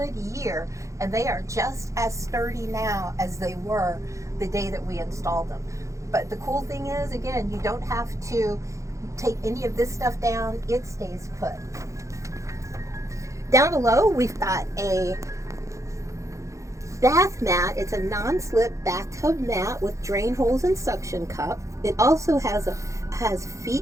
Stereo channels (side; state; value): left; late; 0.15 ms